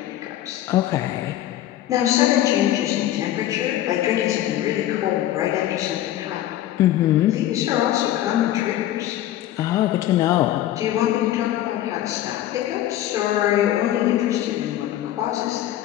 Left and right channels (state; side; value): quieter; right; 13.2 dB